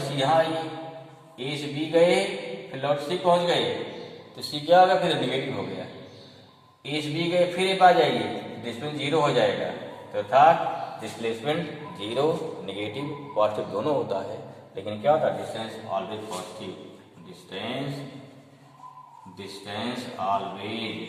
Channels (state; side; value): identical; both; correlation 1.00